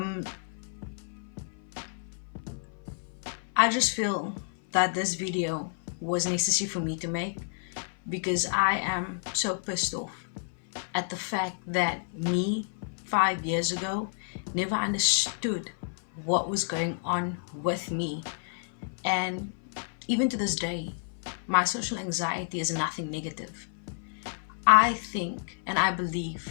I just feel that this video was necessary for me to make because I am so pissed off at the fact that me 5 years ago never understood what was going on with me. And even to this day, my social anxiety is nothing negative. I think and I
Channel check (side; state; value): right; silent; 55 dB below the other